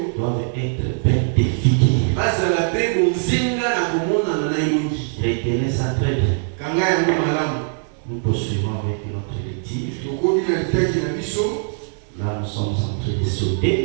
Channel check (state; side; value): silent; left; digital silence